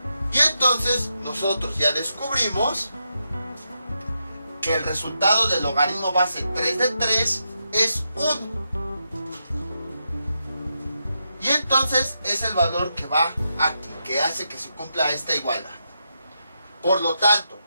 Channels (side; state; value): both; inverted; correlation -0.84